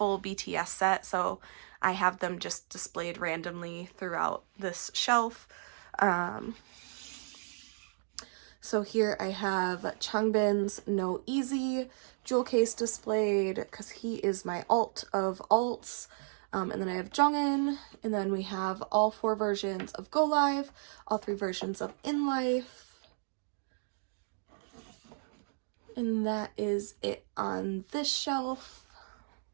BTS set, so I have them just displayed randomly throughout this shelf. So here I have Changbin's No Easy jewel case displayed because he is my alt of alts. And then I have Jongin, and then we have all 4 versions of Go Live, all 3 versions of In Life. And that is it on this shelf.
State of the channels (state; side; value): silent; left; digital silence